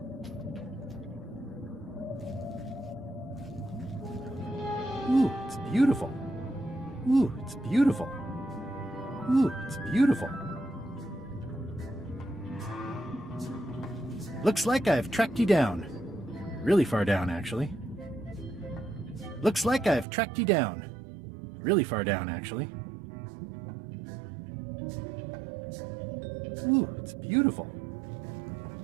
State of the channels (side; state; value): left; drops out; at 20.1 s